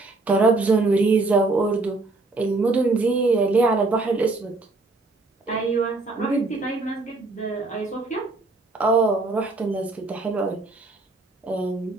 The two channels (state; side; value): quieter; left; 3.3 dB